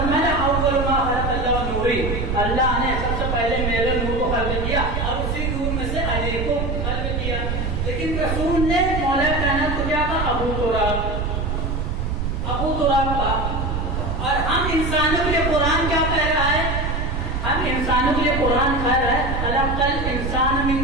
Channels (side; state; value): right; noise; rumble, 1 dB below the sound